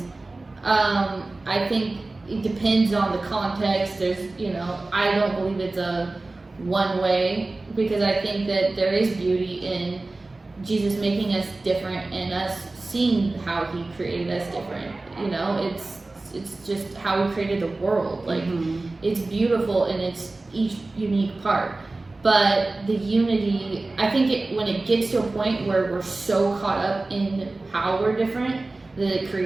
I think it depends on the context. There's, you know, I don't believe it's a one way, because I think that there is beauty in Jesus making us different and us seeing how he created us different. You know, it's just how he created the world. Like, it's beautiful in its each unique part. But the unity, I think when it gets to a point where we're so caught up in how we're different that it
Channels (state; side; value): quieter; left; 3.2 dB